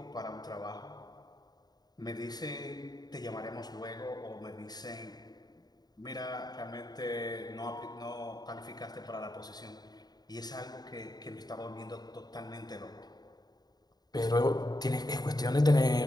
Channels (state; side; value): late; right; 0.19 ms